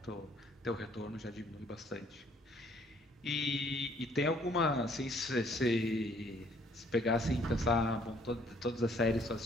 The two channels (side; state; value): both; normal; correlation 0.63